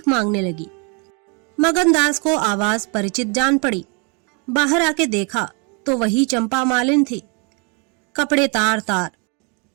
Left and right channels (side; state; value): left; quieter; 34.6 dB